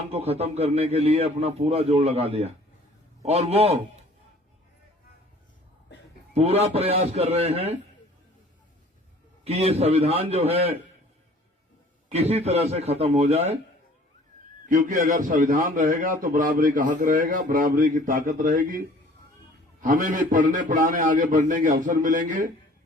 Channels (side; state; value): both; normal; correlation 0.51